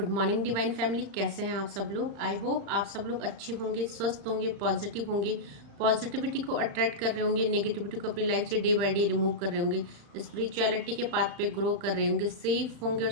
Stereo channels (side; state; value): left; late; 35 ms